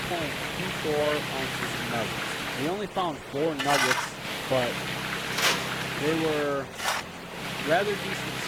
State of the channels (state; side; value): identical; both; correlation 1.00